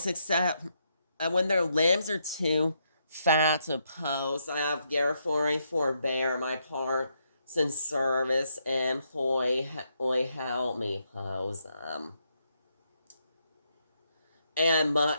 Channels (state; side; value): inverted; both; correlation -0.78